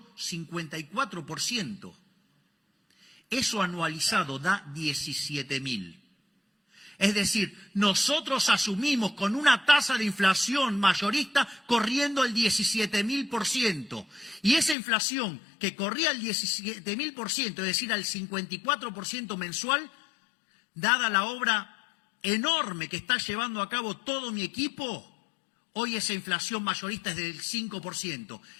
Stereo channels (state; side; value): drops out; right; at 14.8 s